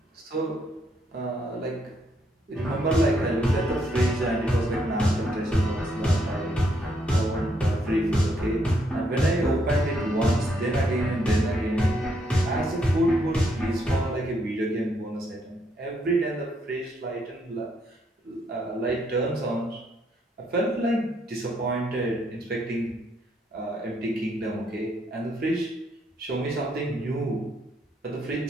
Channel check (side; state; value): both; normal; correlation 0.74